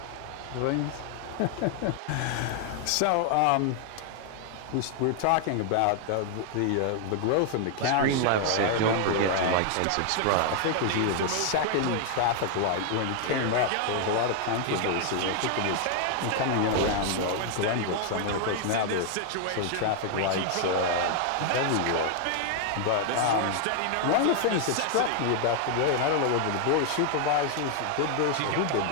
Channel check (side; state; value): both; different; correlation 0.00